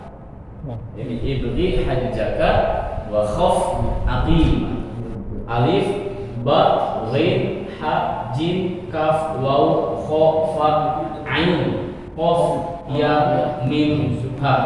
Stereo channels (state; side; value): identical; both; correlation 1.00